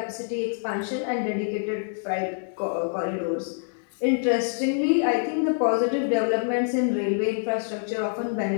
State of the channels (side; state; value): right; silent; digital silence